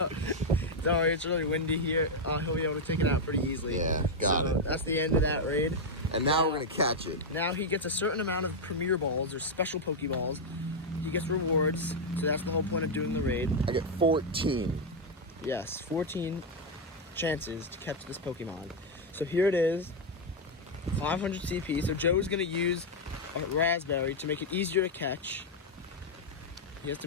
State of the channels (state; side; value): normal; both; correlation 0.01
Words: Sorry, it's really windy here. He'll be able to take it out pretty easily. Yeah, got it. That's the end of that raid. And now we're gonna catch it. Now he gets a certain amount of Premier Balls or special Pokeballs. He gets rewards, so that's the whole point of doing the raid. I get 14. Yes, 14 chances to catch this Pokemon. So here it is, 500 CP. So Joe's gonna use a Raspberry to make it easier to catch. He has to